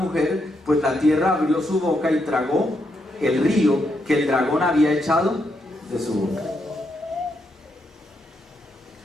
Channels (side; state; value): both; normal; correlation 0.79